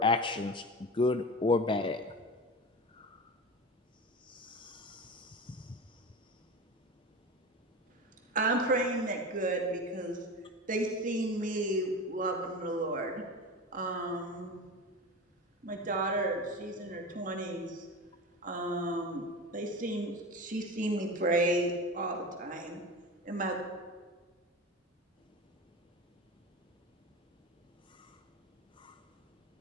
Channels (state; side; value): normal; both; correlation 0.28